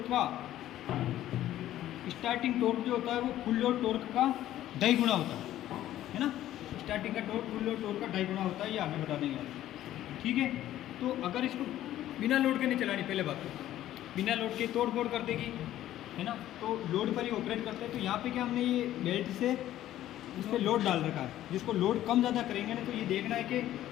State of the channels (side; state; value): right; quieter; 13.2 dB